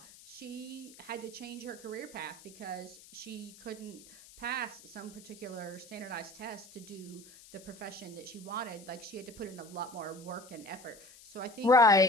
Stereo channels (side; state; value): left; noise; hiss, 20 dB below the sound